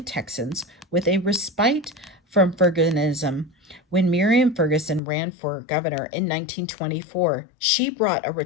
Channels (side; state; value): right; drops out; at 5.0 s